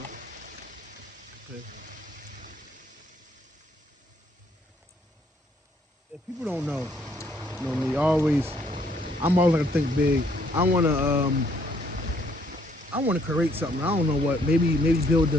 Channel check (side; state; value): both; normal; correlation 0.67